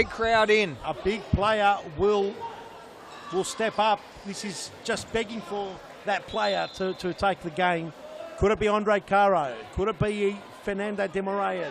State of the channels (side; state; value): both; identical; correlation 1.00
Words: crowd in. A big player will step up. This is just begging for that player to take the game. Could it be Andre Caro? Could it be Fernando de